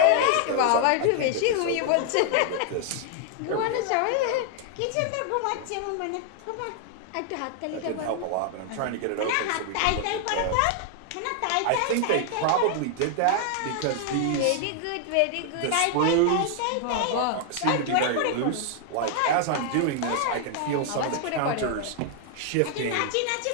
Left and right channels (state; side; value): different; both; correlation 0.00